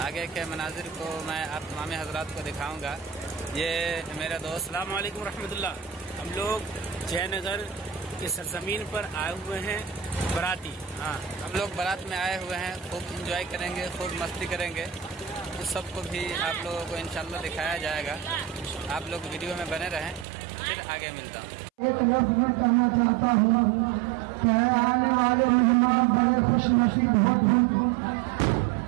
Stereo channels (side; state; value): left; drops out; at 20.2 s